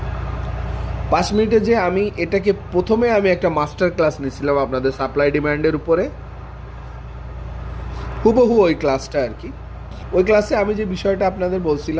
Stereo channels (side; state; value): both; identical; correlation 1.00